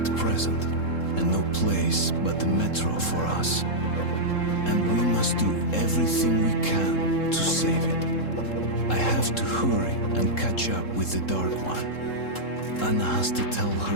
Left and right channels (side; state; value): right; late; 3.7 ms